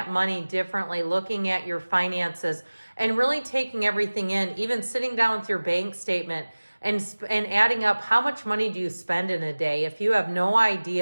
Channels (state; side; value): inverted; both; correlation -1.00